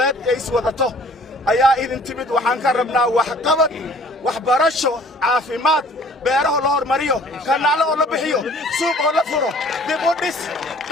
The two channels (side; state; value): both; normal; correlation 0.53